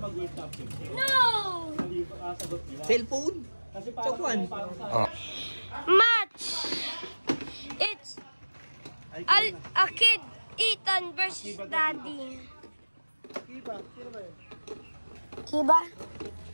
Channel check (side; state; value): both; inverted; correlation -1.00